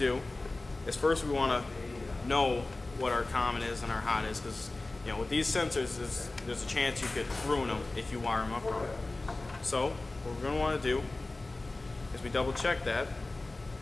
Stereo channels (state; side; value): quieter; right; 3.1 dB